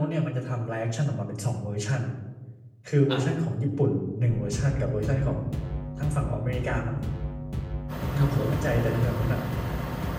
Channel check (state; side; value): identical; both; correlation 1.00